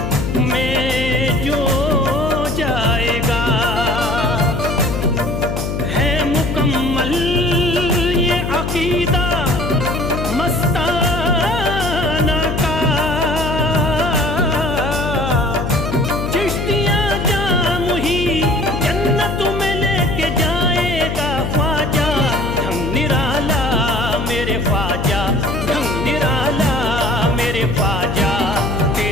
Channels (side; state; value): left; noise; hum, 3 dB below the sound